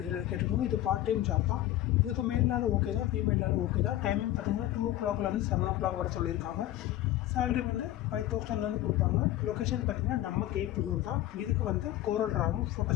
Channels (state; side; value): quieter; right; 14.1 dB